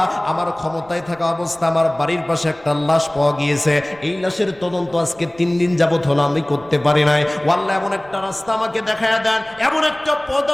আমার ক্ষমতায় থাকা অবস্থা আমার বাড়ির পাশে একটা লাশ পাওয়া গিয়েছে, এই লাশের তদন্ত আজকে 3 দিন যাবত হলো আমি করতে পারি নাই। ও আল্লাহ, এমন একটা রাস্তা আমাকে দেখায়া দেন, এমন একটা পথ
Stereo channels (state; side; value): noise; right; rumble, 25 dB below the sound